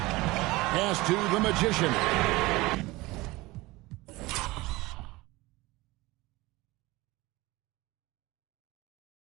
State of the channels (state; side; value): quieter; left; 20.9 dB